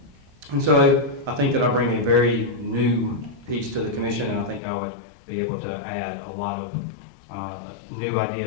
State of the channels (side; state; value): right; drops out; at 4.6 s